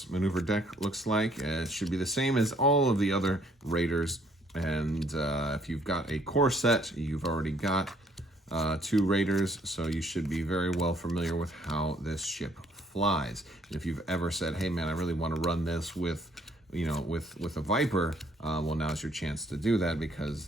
maneuver deck looks like. It should be the same as all of the other Raiders. And if you've got a core set, you've already got 2 Raiders, so you should be very well familiar with how this ship flies. And if you've ever said, hey man, I really want to run this with, you know, with a Viper, well, now's your chance to do that, because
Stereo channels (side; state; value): both; normal; correlation 0.65